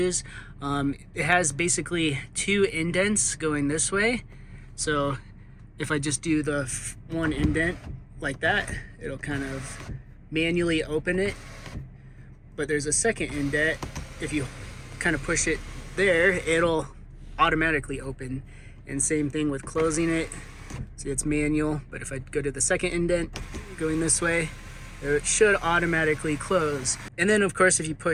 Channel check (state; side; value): identical; both; correlation 1.00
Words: It has basically two indents going this way. So if I just do the one indent like that, it'll kind of manually open it. But there's a second indent. If you kind of push it there, it'll automatically open. And same thing with closing it. See, it's manual, but if I go to the second indent going this way, it should automatically close. And then of course, if you